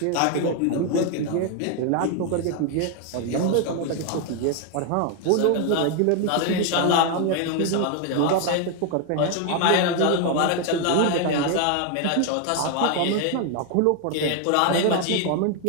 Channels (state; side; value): different; both; correlation 0.01